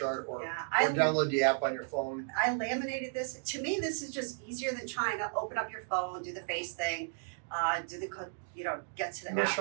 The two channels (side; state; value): left; silent; digital silence